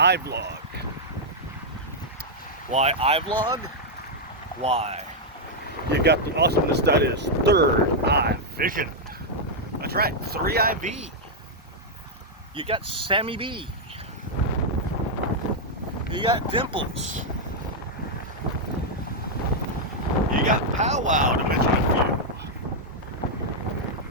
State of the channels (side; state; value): both; normal; correlation -0.03